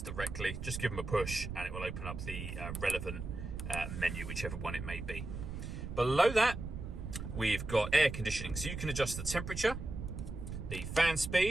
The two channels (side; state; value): right; noise; rumble, 7 dB below the sound